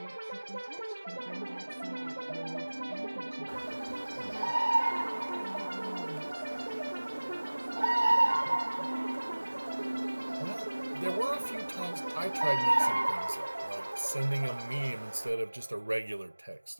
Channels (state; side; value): inverted; both; correlation -1.00